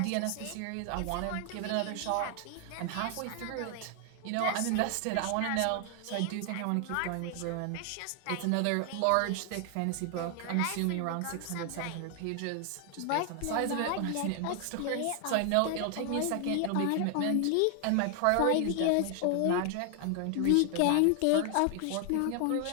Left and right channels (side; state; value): both; different; correlation 0.00